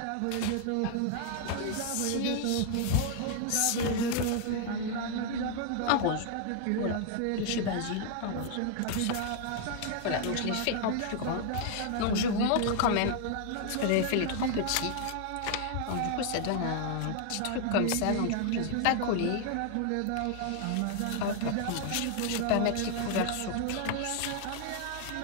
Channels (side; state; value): both; different; correlation 0.00